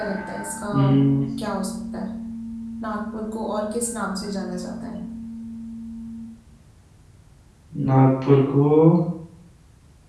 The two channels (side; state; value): both; identical; correlation 1.00